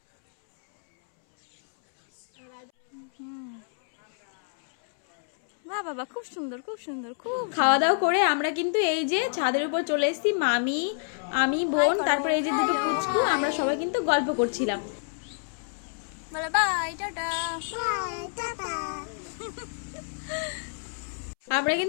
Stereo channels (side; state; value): right; silent; 60 dB below the other